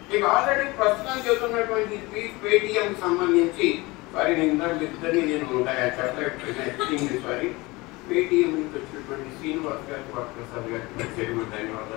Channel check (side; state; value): right; quieter; 22.9 dB